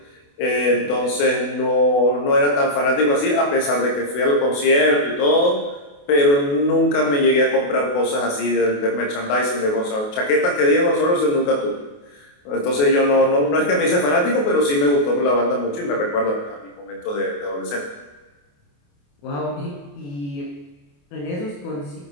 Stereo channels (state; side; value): late; right; 28 ms